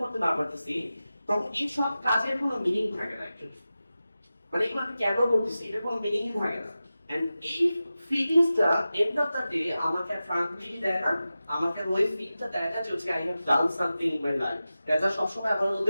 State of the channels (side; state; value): both; inverted; correlation -0.94